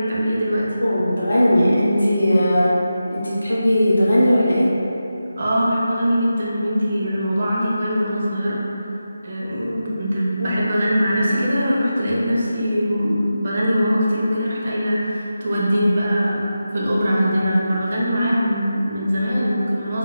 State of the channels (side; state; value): both; inverted; correlation -0.91